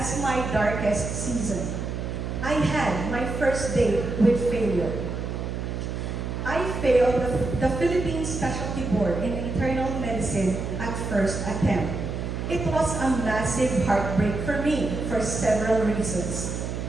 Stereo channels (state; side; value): noise; right; hum, 4 dB below the sound